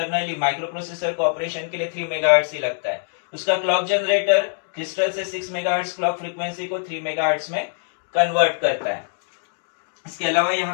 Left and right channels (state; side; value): silent; right; 63 dB below the other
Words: माइक्रो प्रोसेसर को ऑपरेशन के लिए 3 मेगाहर्ट्ज ही लगता है। उसका क्लॉक जनरेटर क्रिस्टल से 6 मेगाहर्ट्ज क्लॉक फ्रीक्वेंसी को 3 मेगाहर्ट्ज में कन्वर्ट करता है। इसके अलावा